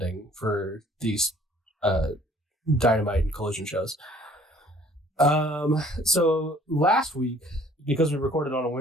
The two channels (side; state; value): both; normal; correlation 0.56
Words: for these Dynamite and Collision shows. So last week, because we recorded on a